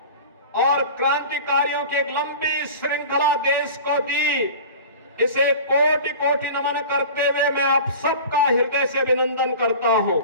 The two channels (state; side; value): inverted; both; correlation -0.38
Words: और क्रांतिकारियों की एक लंबी श्रृंखला देश को दी, इसे कोटि कोटि नमन करते हुए मैं आप सबका हृदय से अभिनंदन करता हूं।